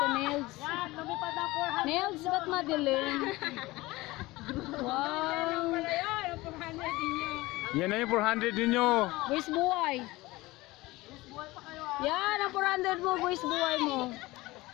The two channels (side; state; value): right; quieter; 20.2 dB